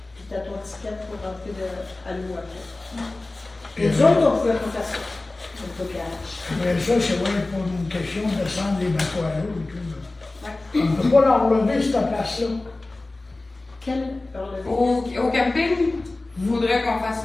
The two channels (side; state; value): right; quieter; 3.0 dB